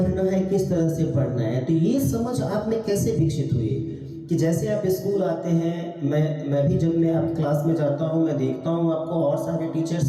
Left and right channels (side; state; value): both; identical; correlation 1.00